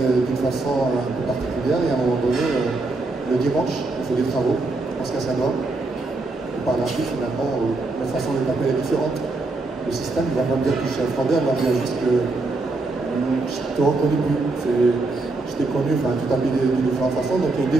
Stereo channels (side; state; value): left; quieter; 3.3 dB